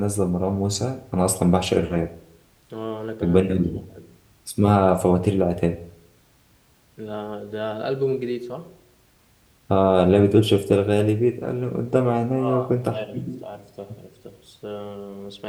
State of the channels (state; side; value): identical; both; correlation 1.00